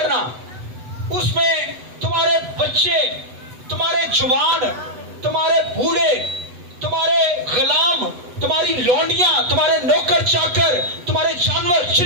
اس میں تمہارے بچے، تمہارے جوان، تمہارے بوڑھے، تمہارے غلام، تمہاری لونڈیاں، تمہارے نوکر چاکر، تمہارے جانور،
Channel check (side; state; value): left; late; 7.9 ms